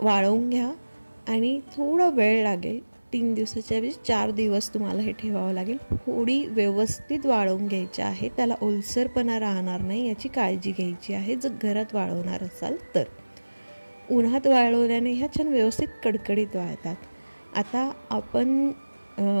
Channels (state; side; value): inverted; both; correlation -1.00